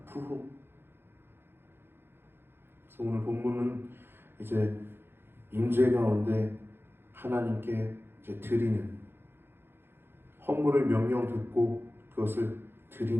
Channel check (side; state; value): left; late; 0.11 ms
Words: 부흥. 그래서 오늘 본문은 이제 임재 가운데 하나님께 이제 드리는, 헌물을 명령 듣고 그것을